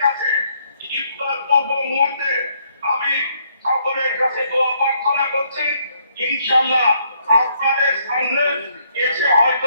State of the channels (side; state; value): both; inverted; correlation -0.70